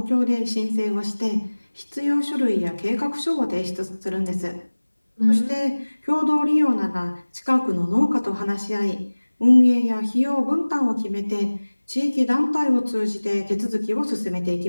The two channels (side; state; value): both; inverted; correlation -1.00